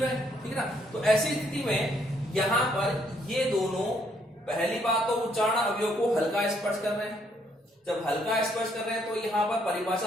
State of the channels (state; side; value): normal; both; correlation 0.70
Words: हैं, ठीक है ना। तो ऐसी स्थिति में यहां पर ये दोनों, पहली बात तो उच्चारण अवयव को हल्का स्पर्श कर रहे हैं। जब हल्का स्पर्श कर रहे हैं तो यहां पर